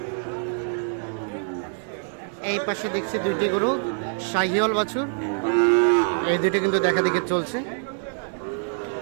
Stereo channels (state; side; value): silent; left; 62 dB below the other